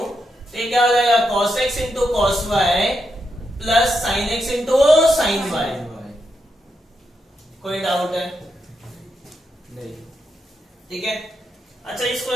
तो ये क्या हो जाएगा? cos x into cos y plus sin x into sin y। कोई डाउट है? नहीं। ठीक है। अच्छा इस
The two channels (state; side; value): normal; both; correlation 0.83